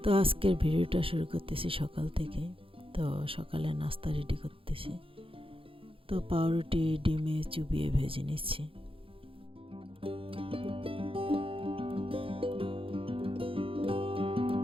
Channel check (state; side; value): late; left; 0.26 ms